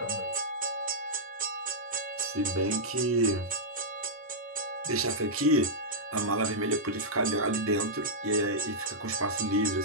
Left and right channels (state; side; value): normal; both; correlation -0.08